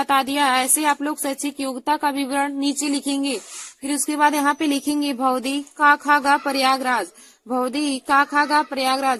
दिया है। ऐसे आप लोग शैक्षिक योग्यता का विवरण नीचे लिखेंगे। फिर उसके बाद यहाँ पे लिखेंगे भौदी का खा गा प्रयागराज, भौदी का खा गा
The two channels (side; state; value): both; identical; correlation 1.00